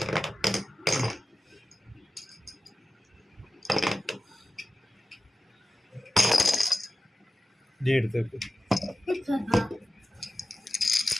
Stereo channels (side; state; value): both; normal; correlation 0.94